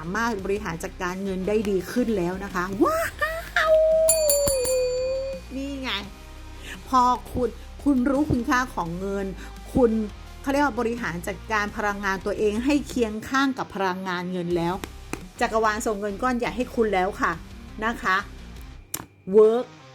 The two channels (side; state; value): both; identical; correlation 1.00